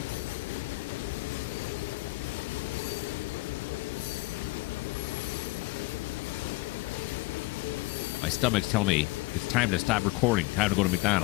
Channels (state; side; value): quieter; right; 21.7 dB